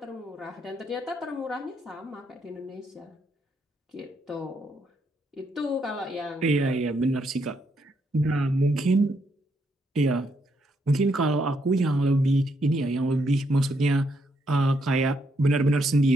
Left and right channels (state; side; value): normal; both; correlation 0.76